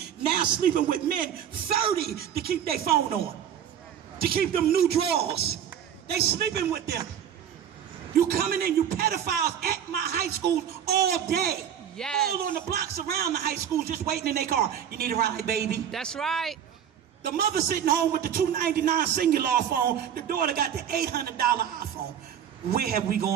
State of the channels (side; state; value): left; quieter; 9.2 dB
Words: now sleeping with men 30 to keep their phone on, to keep them new drawers. They sleeping with them. You coming in, you pedophiles at my high schools all day. Yes. All on the blocks around the high schools just waiting in their car. You need a ride, baby. That's right. The mother sitting home with the $299 singular phone. The daughter got the $800 iPhone. Where have we